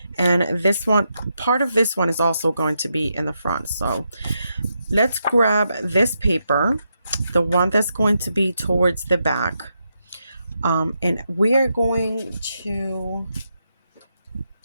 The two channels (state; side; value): inverted; both; correlation -0.83